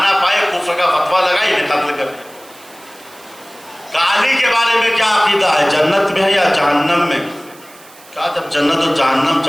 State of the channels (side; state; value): right; noise; hiss, 23 dB below the sound